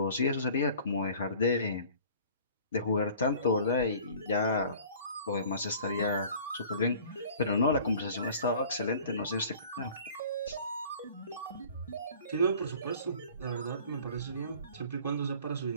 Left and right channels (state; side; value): inverted; both; correlation -0.48